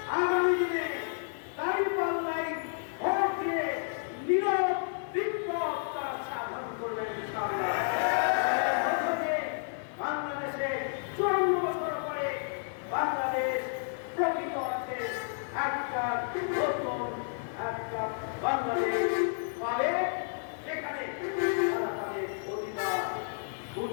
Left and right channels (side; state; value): right; silent; digital silence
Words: আগামী দিনে দাঁড়িপাল্লায় ভোট দিয়ে নীরব বিপ্লব তারা সাধন করবেন। বাংলাদেশে 54 বছর পরে বাংলাদেশ প্রকৃত অর্থে একটা নতুন একটা বাংলাদেশ পাবে, যেখানে তারা তাদের অধিকার